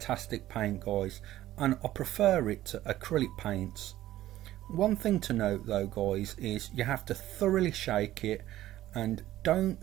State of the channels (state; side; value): quieter; left; 14.3 dB